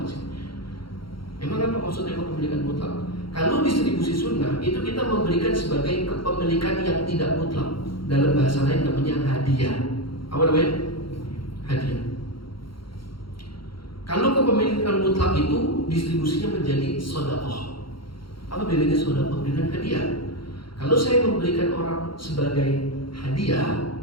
sih. Emang apa maksudnya kepemilikan mutlak? Kalau distribusi sunnah itu kita memberikan sebagai kepemilikan yang tidak mutlak. Dalam bahasa lain namanya hadiah. Apa namanya? Hadiah. Kalau kepemilikan mutlak itu distribusinya menjadi sedekah. Apa bedanya sedekah dengan hadiah? Kalau saya memberikan orang sebagai hadiah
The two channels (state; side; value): late; right; 0.73 ms